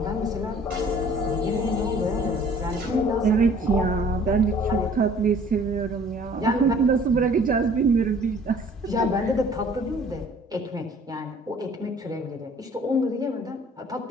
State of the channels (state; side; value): normal; both; correlation 0.53